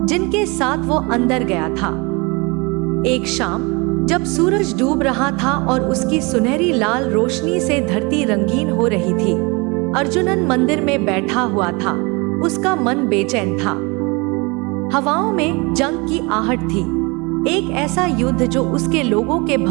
जिनके साथ वो अंदर गया था। एक शाम जब सूरज डूब रहा था और उसकी सुनहरी लाल रोशनी से धरती रंगीन हो रही थी, अर्जुनन मंदिर में बैठा हुआ था। उसका मन बेचैन था। हवाओं में जंग की आहट थी, एक ऐसा युद्ध जो उसके लोगों के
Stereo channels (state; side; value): quieter; left; 27.7 dB